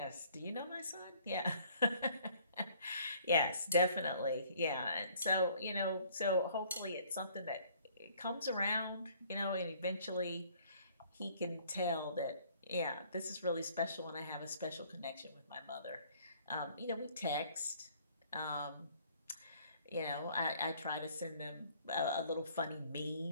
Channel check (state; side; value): inverted; both; correlation -0.58